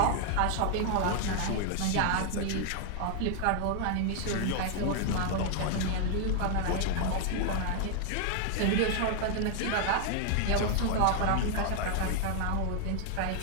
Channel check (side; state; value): both; different; correlation 0.00